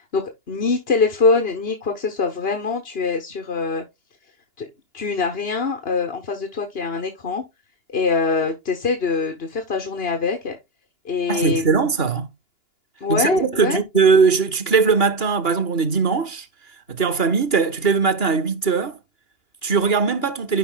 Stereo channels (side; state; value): right; late; 2.9 ms